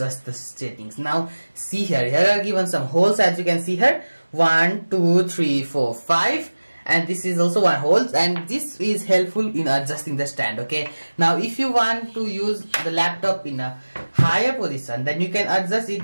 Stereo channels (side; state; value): both; inverted; correlation -1.00